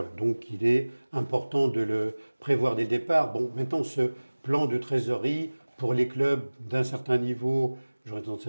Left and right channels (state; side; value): inverted; both; correlation -1.00